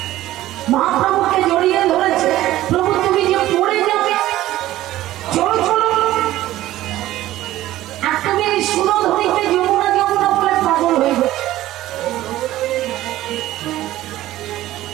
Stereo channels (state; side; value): quieter; left; 15.0 dB